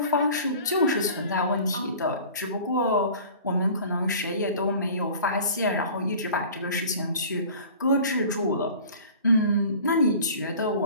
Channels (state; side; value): inverted; both; correlation -0.43